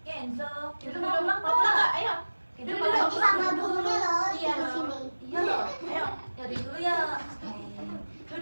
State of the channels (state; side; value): inverted; both; correlation -1.00